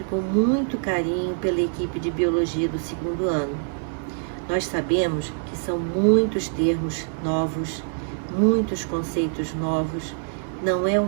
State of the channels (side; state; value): left; silent; digital silence